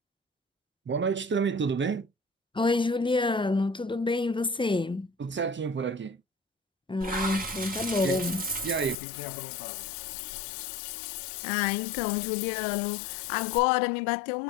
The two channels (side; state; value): right; drops out; at 9.0 s